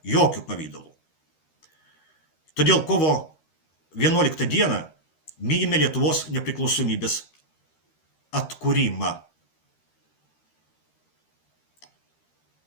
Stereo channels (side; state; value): right; late; 13 ms